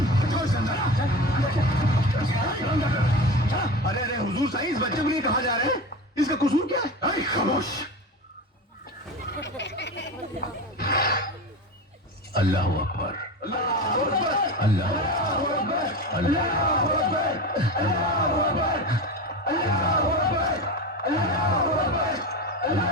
अरे अरे हुजूर साईं, इस बच्चे को लिए कहा जा रहे हैं? इसका कसूर क्या है? अरे खामोश! अल्लाह अकबर, अल्लाह अकबर, अल्लाह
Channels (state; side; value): normal; both; correlation 0.26